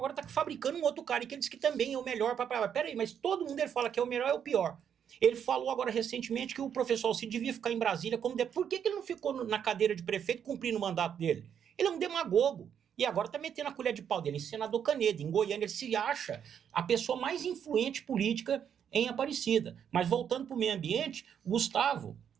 está fabricando um outro cara, e que ele diz que também é o melhor. Peraí, mas todo mundo ele fala que é o melhor, é o pior. Ele falou agora recentemente que o professor Alcide devia ficar em Brasília como... Por que ele não ficou na cadeira de prefeito cumprindo o mandato dele? Ele é um demagogo. E agora está metendo a colher de pau dele em senador Canedo, em Goiânia. Ele se acha a pessoa mais influente política em Aparecida. Mas voltando para o meio ambiente, Gustavo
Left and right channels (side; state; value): left; quieter; 8.4 dB